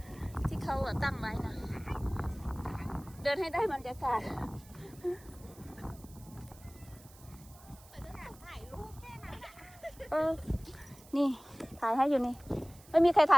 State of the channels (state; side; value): noise; right; hiss, 23 dB below the sound